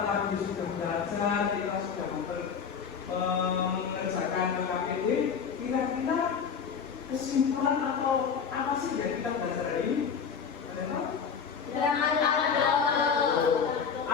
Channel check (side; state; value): right; quieter; 6.6 dB